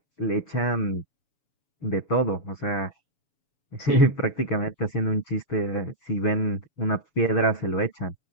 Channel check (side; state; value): right; late; 7.1 ms